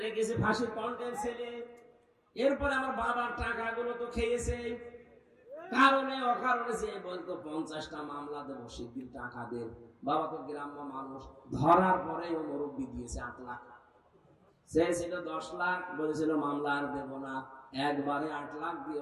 রেখেছে ফাঁসির কন্টেন্ট ছেলে। এরপরে আমার বাবার টাকাগুলো তো খেয়েছে, কারণে অকারণে যে বলতো 50টা মামলা দেবো, শিগগির টাকা দেন। বাবা তো গ্রাম্য মানুষ, ধরার পরে ও মুরব্বি দিয়েছে 8 লাখ। সে ছিল 10 লাখ, বলেছিল মামলা আর দেবো না। একবারে 8 লাখ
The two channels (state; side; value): identical; both; correlation 1.00